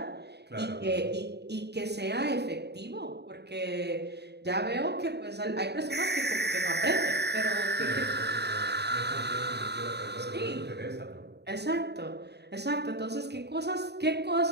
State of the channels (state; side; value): late; left; 0.48 ms